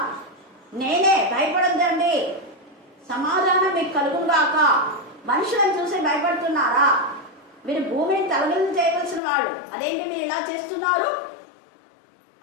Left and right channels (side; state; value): right; drops out; at 9.2 s